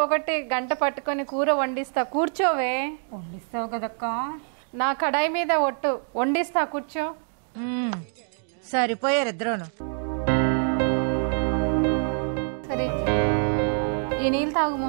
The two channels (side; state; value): left; silent; 61 dB below the other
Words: ఒకటి గంట పట్టుకొని కూర వండిస్తా, కూర్చోవే. వండిస్తావు కదక్క? నా కడాయి మీద ఒట్టు, వండిస్తా, కూర్చో. సరిపోయారు ఇద్దరును. సరే, ఈ నీళ్ళు తాగు